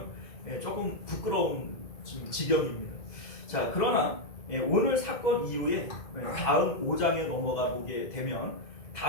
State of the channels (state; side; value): late; right; 2.0 ms